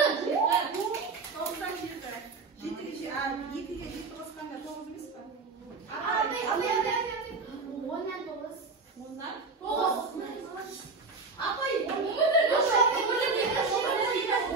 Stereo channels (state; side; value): quieter; left; 4.1 dB